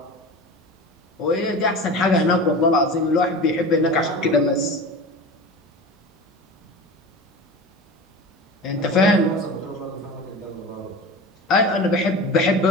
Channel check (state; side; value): normal; both; correlation 0.33